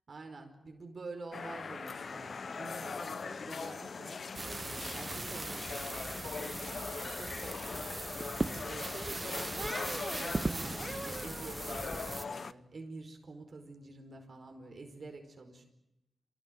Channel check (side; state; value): both; normal; correlation 0.91